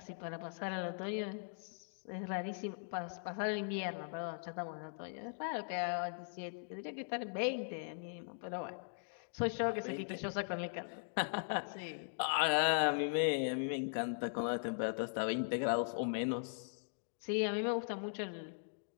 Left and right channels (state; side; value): silent; right; digital silence